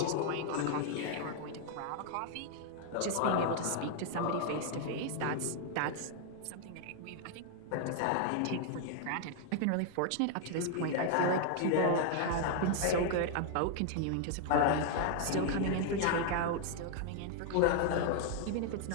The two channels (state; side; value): different; both; correlation 0.00